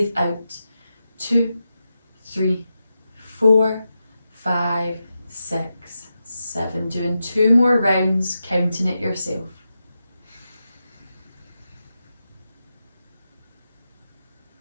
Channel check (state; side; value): inverted; both; correlation -0.89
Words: out, 2, 3, 4, 5, 6, 7. Doing 2 more rounds, counting it yourself.